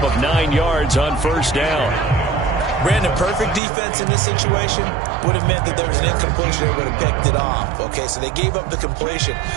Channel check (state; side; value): drops out; left; at 3.6 s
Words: of 9 yards on first down. Brandon, perfect defense in this situation would have meant that there was an incompletion. They would have picked it off. Okay, so they gave up the completion.